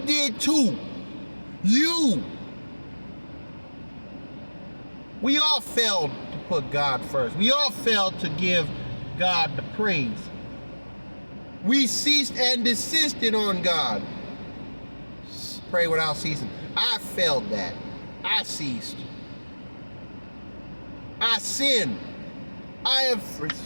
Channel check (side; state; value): both; inverted; correlation -1.00